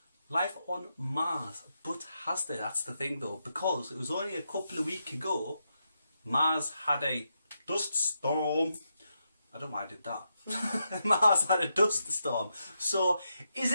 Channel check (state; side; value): inverted; both; correlation -0.84